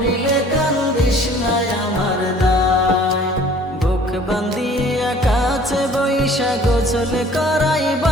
কান্দিস না আমার দায় বুক বান্ধিয়া কাছে বৈশা গোসল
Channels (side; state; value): both; normal; correlation 0.52